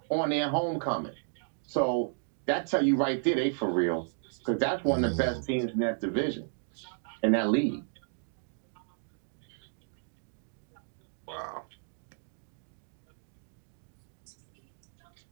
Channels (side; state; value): left; silent; digital silence